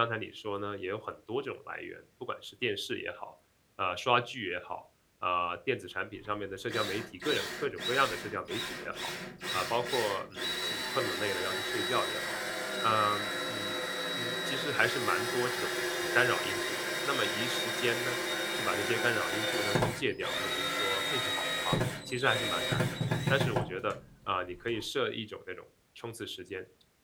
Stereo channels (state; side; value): identical; both; correlation 1.00